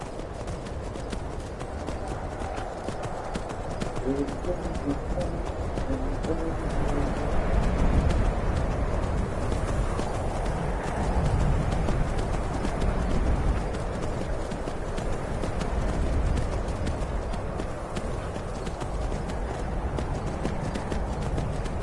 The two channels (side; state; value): both; identical; correlation 1.00